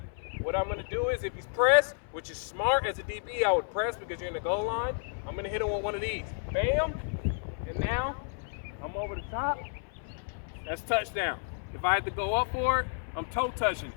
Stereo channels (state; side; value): silent; right; 57 dB below the other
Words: What I'm going to do is, if he's pressed, which is smart as a DB, I would press because you're in the goal line. I'm going to hit him with one of these. Bam. And now I'm over the top. That's touchdown. If I had to go up for it, I'm toe touching